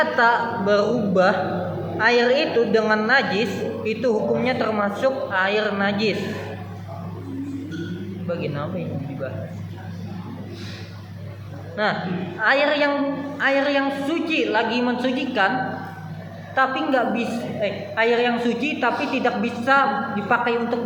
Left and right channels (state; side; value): identical; both; correlation 1.00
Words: berubah air itu dengan najis, itu hukumnya termasuk air najis. Bagian apa yang dibahas? Nah, air yang suci lagi mensucikan, tapi nggak bisa air yang suci tapi tidak bisa dipakai untuk